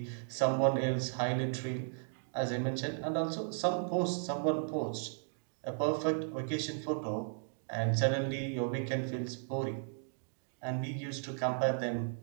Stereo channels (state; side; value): silent; left; digital silence